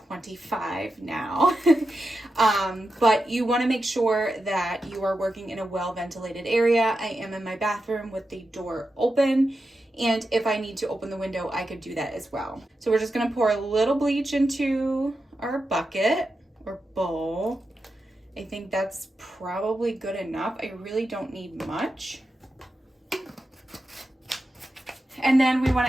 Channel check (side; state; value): both; normal; correlation 0.89